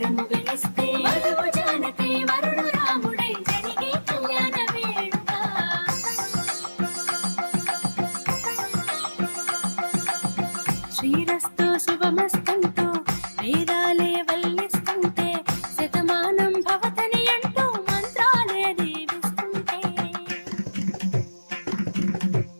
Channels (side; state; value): both; inverted; correlation -1.00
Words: శ్రీరస్తు శుభమస్తంటూ వేదాలే వల్లిస్తుంటే శతమానం భవతని అంటూ మంత్రాలే దీవిస్తుంటే